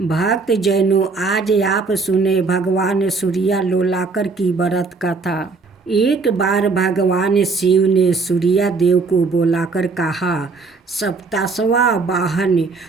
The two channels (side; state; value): left; quieter; 4.2 dB